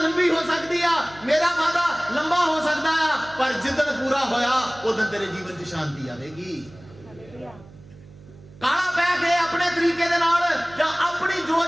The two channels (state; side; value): noise; right; hum, 22 dB below the sound